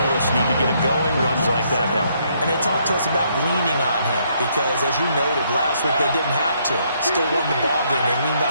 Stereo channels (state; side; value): inverted; both; correlation -0.71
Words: us need to get him going. Runs like that help. And they talked to us about leaning on him because, as you noted, last week they didn't have to. Still won the ball game. They leaned